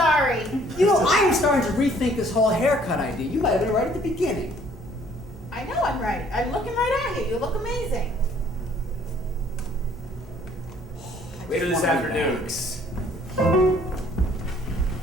You know, I am starting to rethink this whole haircut idea. You might have been right at the beginning. I know I'm right. I'm looking right at you. You look amazing. Later this One of the afternoon. banks.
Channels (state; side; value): normal; both; correlation 0.59